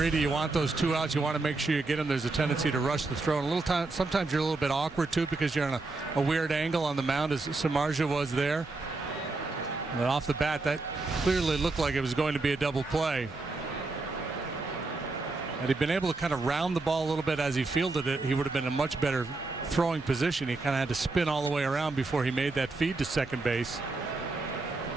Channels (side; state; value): left; quieter; 3.5 dB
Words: you want those 2 outs, you want to make sure you get them. There's a tendency to rush the throw. And sometimes you're a little bit awkward too because you're on a weird angle on the mound, as Samardzia was there. But off the bat, that clearly looked like it was going to be a double play. Had he been able to kind of round the ball a little bit as he fielded it, he would have been in a much better throwing position. He kind of had to spin all the way around before he made that feed to second base.